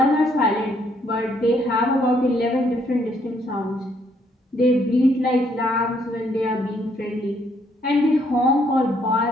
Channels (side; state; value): both; normal; correlation 0.69